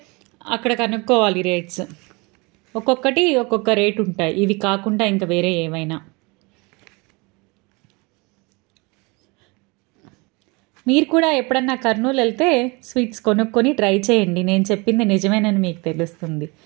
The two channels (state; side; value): quieter; left; 27.2 dB